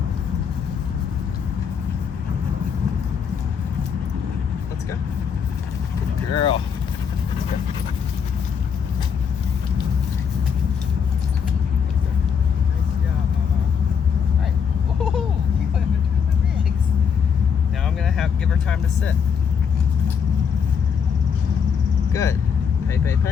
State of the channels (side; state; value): right; quieter; 6.9 dB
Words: Let's go. Good girl. Let's go. Nice job, mama. All right. Oh, you went between my legs. Now I'm gonna give her time to sit. Good.